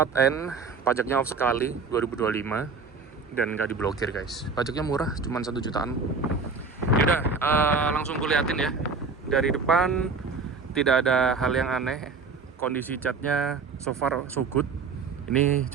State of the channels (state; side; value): quieter; left; 4.7 dB